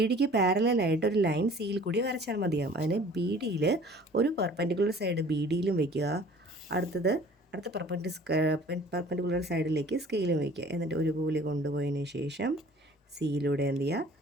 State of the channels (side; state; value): both; normal; correlation 0.49